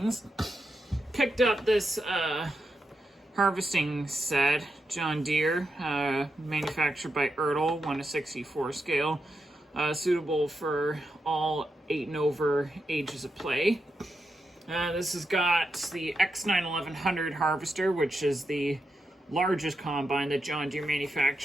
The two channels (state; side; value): normal; both; correlation 0.86